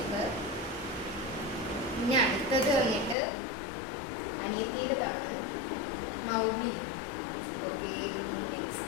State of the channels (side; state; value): right; drops out; at 3.2 s